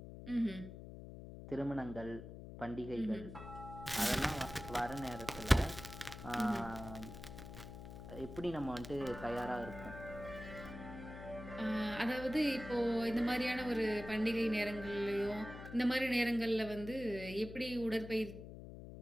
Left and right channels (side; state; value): left; noise; hum, 12 dB below the sound